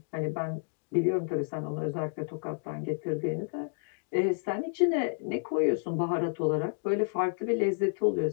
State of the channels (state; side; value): silent; right; digital silence